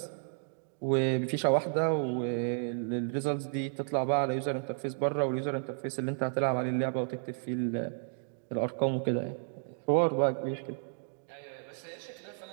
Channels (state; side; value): silent; left; digital silence